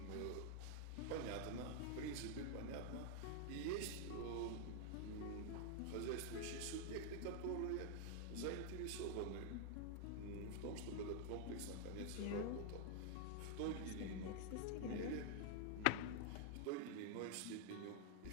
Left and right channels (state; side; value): different; both; correlation 0.00